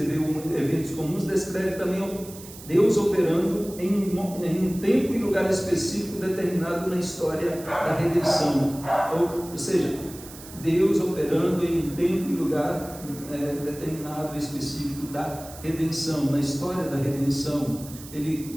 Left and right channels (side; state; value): right; noise; hiss, 16 dB below the sound